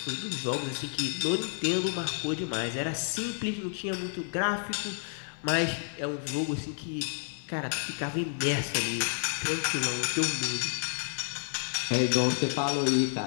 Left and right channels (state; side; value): silent; right; digital silence